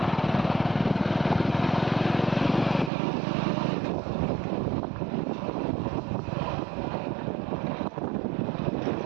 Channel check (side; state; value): left; drops out; at 2.9 s